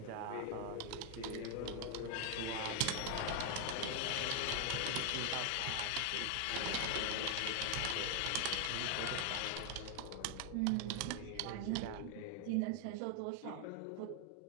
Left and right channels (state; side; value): different; both; correlation 0.00